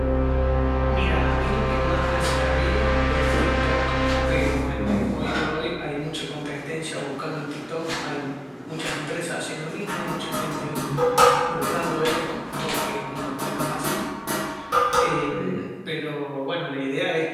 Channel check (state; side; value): identical; both; correlation 1.00